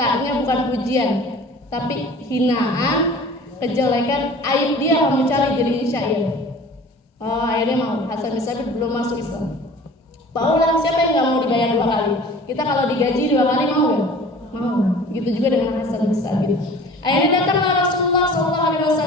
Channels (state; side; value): normal; both; correlation 0.44